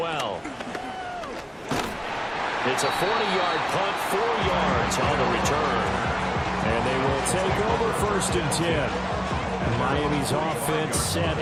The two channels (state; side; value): identical; both; correlation 1.00